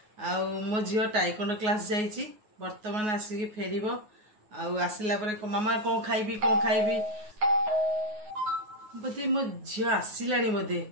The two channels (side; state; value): left; late; 9.5 ms